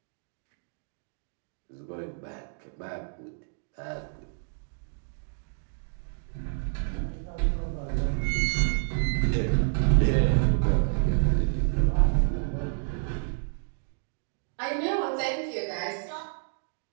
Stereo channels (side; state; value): left; silent; digital silence